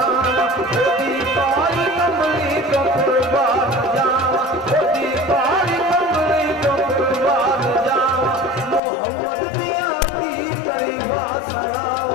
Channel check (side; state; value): right; drops out; at 8.8 s